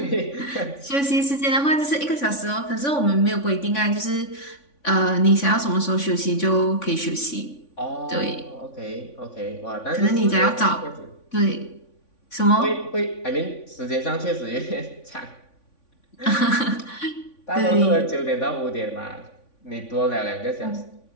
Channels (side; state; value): right; late; 3.5 ms